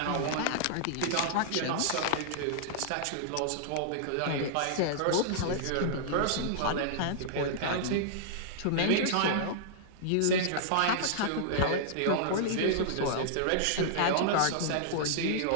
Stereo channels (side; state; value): both; different; correlation -0.01